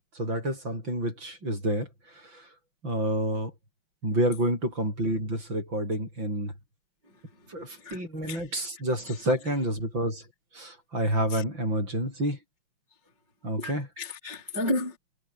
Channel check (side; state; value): left; late; 5.9 ms